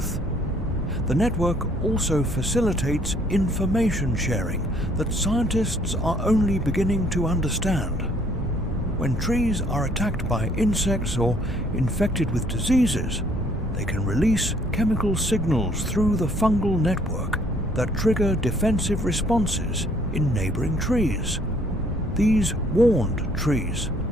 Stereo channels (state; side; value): normal; both; correlation 0.62